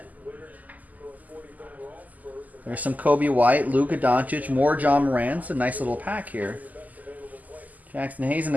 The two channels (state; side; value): late; left; 0.079 ms